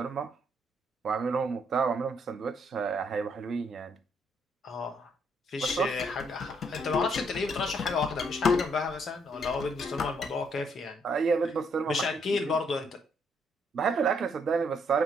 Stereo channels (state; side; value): normal; both; correlation 0.71